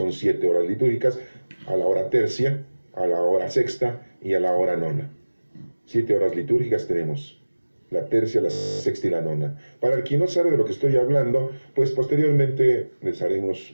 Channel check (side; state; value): both; inverted; correlation -1.00